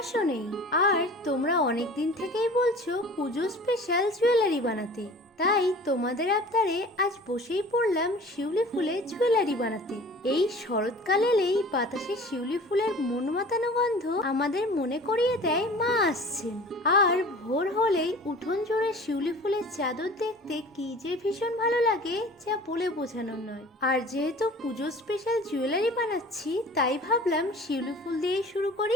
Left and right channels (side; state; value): both; normal; correlation 0.43